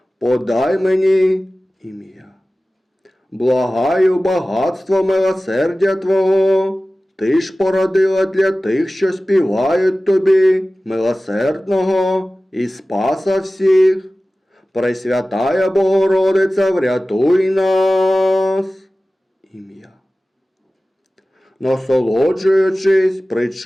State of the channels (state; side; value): normal; both; correlation 0.96